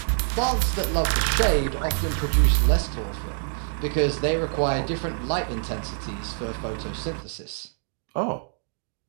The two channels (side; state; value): left; silent; digital silence